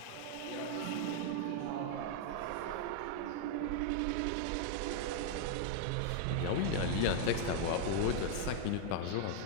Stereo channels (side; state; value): both; different; correlation 0.00